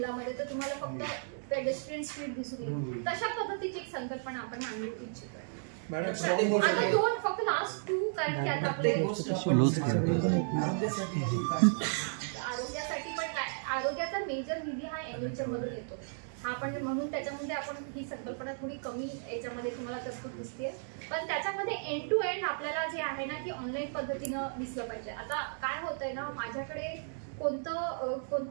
तर तुम्हाला फक्त पेडेस्ट्रियन स्ट्रीट दिसून येईल. तशा पद्धतीची एक संकल्पना आपण मांडू इच्छितोय. आता 2 फक्त लास्ट 2 कारण की आता आपले आरोग्यासाठी पण आरोग्याचा मेजर निधी हा NHM मधून येतो. हा पण म्हणून त्याच्यामध्ये आपण ही संकल्पना थोडी कमी याच्यामध्ये तुम्हाला तरतूद दिसते. पण त्याच्यामध्ये एंड टू एंड आपल्याला जे आहे ना की ऑनलाईन पद्धतीनं दिसलं पाहिजे. आता काय होतंय ना, माझ्याकडे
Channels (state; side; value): silent; left; digital silence